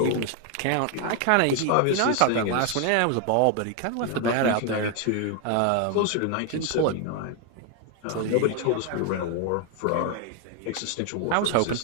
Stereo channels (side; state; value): both; different; correlation 0.01